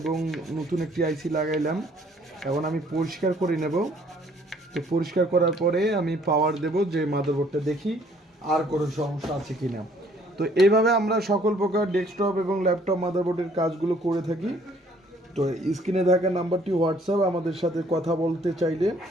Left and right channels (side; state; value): both; normal; correlation 0.60